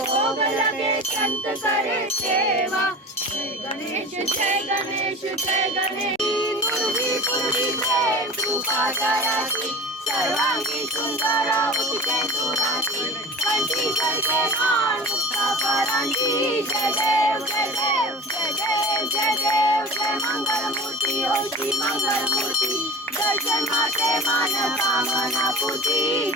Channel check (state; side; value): normal; both; correlation 0.35